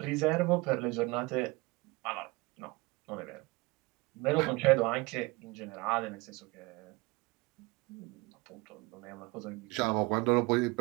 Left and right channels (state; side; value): quieter; left; 24.0 dB